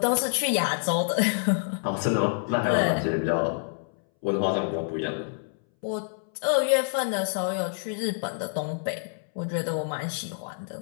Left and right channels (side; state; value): right; silent; 60 dB below the other